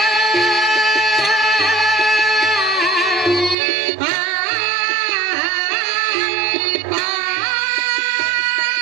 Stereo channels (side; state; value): left; drops out; at 3.6 s